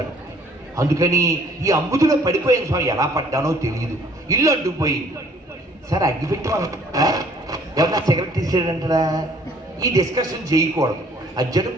అందుకని ఈ అంబుధిలో పడిపోయిన స్వామి, ఎలా పడ్డానో తెలియదు, ఇల్లు అడ్డుపోయింది. సరే అగ్గిపెట్టాం, ఎవరన్నా సిగరెట్ తీసేయడంటారా? ఈ డిస్కషన్ చేయకూడదు. అర్జును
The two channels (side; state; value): both; normal; correlation 0.58